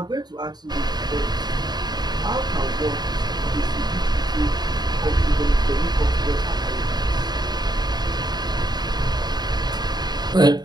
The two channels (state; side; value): late; left; 0.20 ms